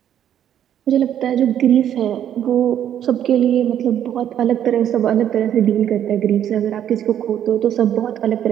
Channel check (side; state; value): left; quieter; 10.2 dB